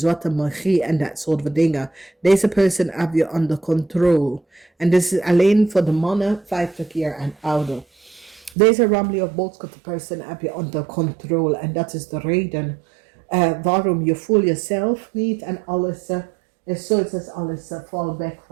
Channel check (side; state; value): left; drops out; at 8.6 s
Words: magie en dat soort van dingen. Deze person heb je under control. En dit is alleen voor de mannen 50 jaar en ouder. Deze ramli of boodschap person heb je under control. En dat is de reden waarom je voelt jezelf niet en alles is zoiets als alles valt weg